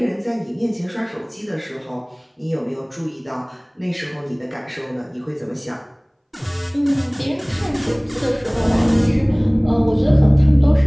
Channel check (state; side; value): identical; both; correlation 1.00